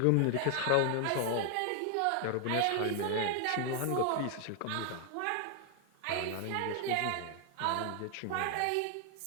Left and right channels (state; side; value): different; both; correlation 0.00